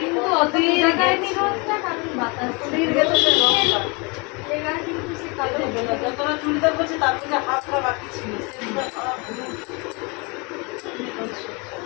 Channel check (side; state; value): right; quieter; 30.0 dB